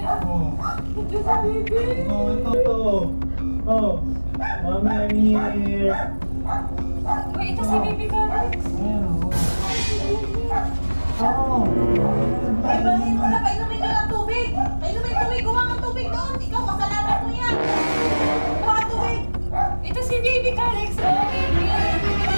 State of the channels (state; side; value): inverted; both; correlation -1.00